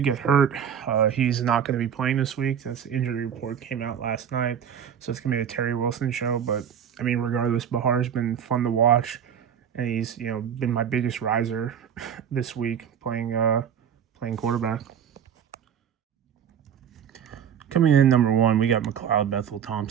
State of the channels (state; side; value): quieter; left; 8.5 dB